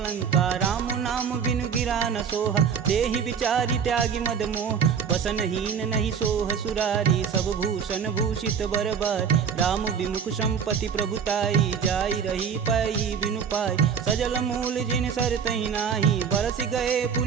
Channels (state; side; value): quieter; left; 7.0 dB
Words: राम नाम बिनु गिरा न सोहा, देहि विचारी त्यागी मद मोह। बसनहीन नहीं सोह सुरारी, सब भूषण भूषित बरबार। राम विमुख संपत्ति प्रभुताई, जाई रही पाई बिनु पाई। सजल मूल जिन सर तहि नाही, बरस गए